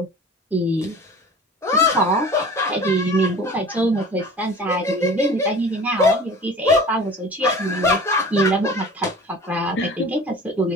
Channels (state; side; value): normal; both; correlation 0.41